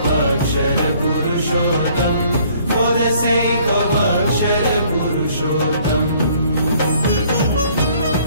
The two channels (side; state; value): both; inverted; correlation -0.60